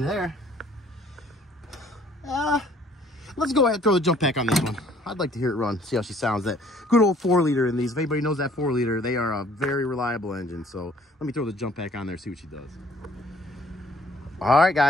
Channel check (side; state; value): both; normal; correlation 0.59